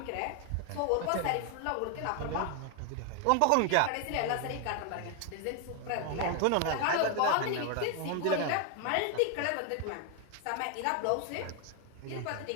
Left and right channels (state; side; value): different; both; correlation 0.01